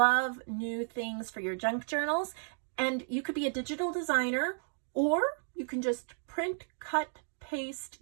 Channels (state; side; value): silent; left; 56 dB below the other